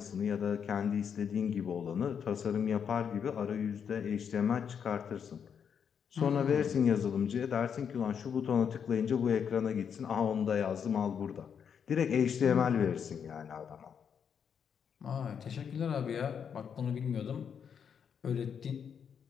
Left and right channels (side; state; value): right; quieter; 7.4 dB